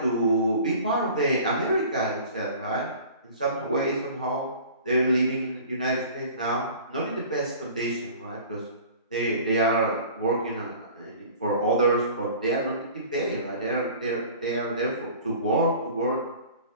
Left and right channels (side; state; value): both; inverted; correlation -0.44